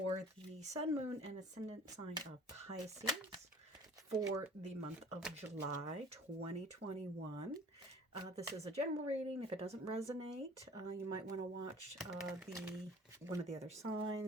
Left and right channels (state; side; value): normal; both; correlation 0.48